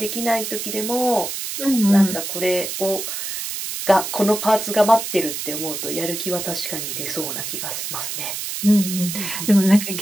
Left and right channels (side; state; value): right; noise; hiss, 5 dB below the sound